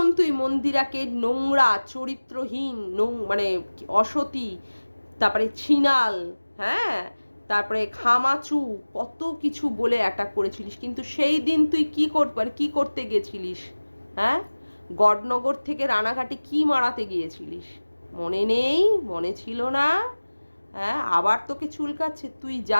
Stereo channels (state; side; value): inverted; both; correlation -1.00